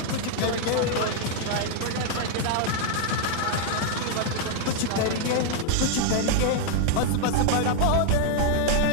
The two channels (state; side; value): different; both; correlation 0.00